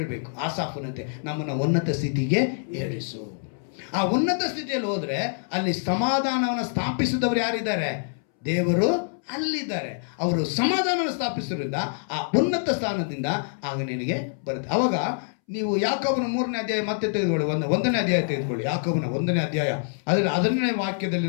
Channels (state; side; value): silent; right; 61 dB below the other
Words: ಆಸಾಫನಂತೆ, ನಮ್ಮನ್ನು ಉನ್ನತ ಸ್ಥಿತಿಗೆ ಏರಿಸು. ಆ ಉನ್ನತ ಸ್ಥಿತಿಯಲ್ಲಿ ಹೋದರೆ ಅಲ್ಲಿ ಸಮಾಧಾನವನ್ನು ಸ್ಥಾಪಿಸಿದವರು ಯಾರಿದ್ದಾರೆ? ದೇವರು ಅಲ್ಲಿದ್ದಾರೆ. ಅವರು ಸಮಾಧಾನವನ್ನು ಸ್ಥಾಪಿಸೋದ್ರಿಂದ ಆ ಉನ್ನತ ಸ್ಥಾನದಿಂದ ಆಗ ನಿನಗೆ ಬರುತ್ತೆ. ಅವಾಗ ನೀವು ಯಾಕೋಬನ 3ನೇ ಅಧ್ಯಾಯ ಮತ್ತೆ ತೆಗೆದುಕೊಳ್ಳಿ, 1ನೇ ಅಧ್ಯಾಯ ತೆಗೆದುಕೊಳ್ಳಿ. ಯಾಕೋಬನ 1ನೇ ಅಧ್ಯಾಯ ಅದರಲ್ಲಿ 10ನೇ ವಾಕ್ಯದಲ್ಲಿ